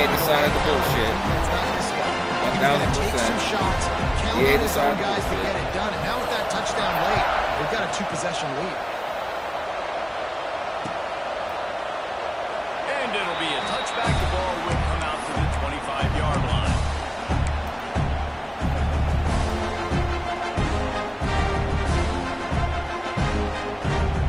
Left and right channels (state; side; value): identical; both; correlation 1.00